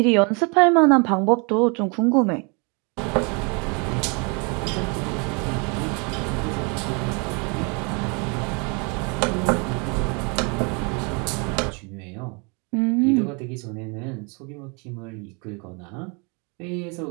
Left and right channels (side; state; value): left; quieter; 32.4 dB